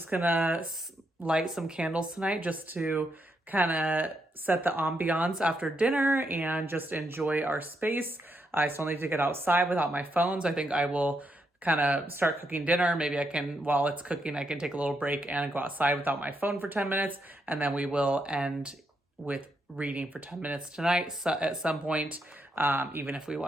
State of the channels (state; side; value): normal; both; correlation 0.80